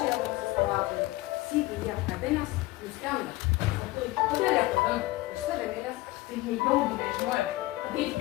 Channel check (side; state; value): right; quieter; 19.0 dB